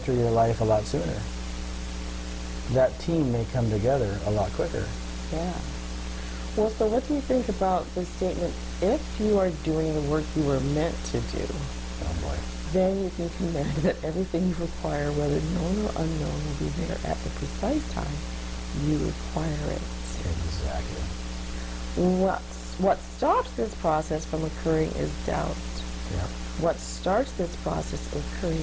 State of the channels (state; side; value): identical; both; correlation 1.00